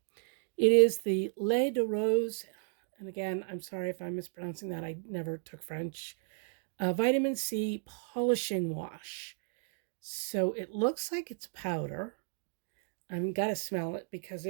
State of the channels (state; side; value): silent; left; digital silence